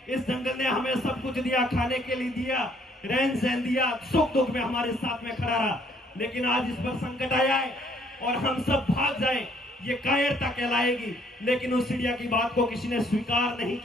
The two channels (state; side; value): normal; both; correlation 0.64